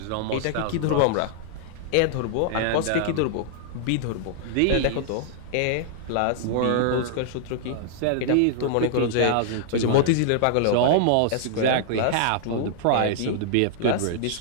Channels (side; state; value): both; different; correlation -0.01